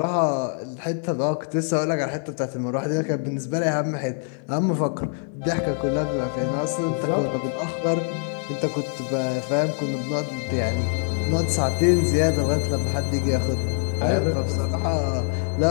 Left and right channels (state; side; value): silent; right; 58 dB below the other